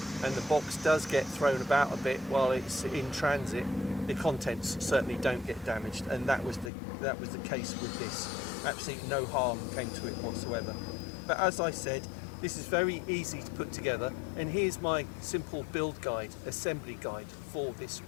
and the box does get thrown about a bit while it's in transit, the contents certainly don't get damaged, and that was the case with this. Absolutely no harm came to it whatsoever. But as I said, this is very easy to put together, and here's my simple build guide, assembly guide for this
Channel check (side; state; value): right; drops out; at 6.7 s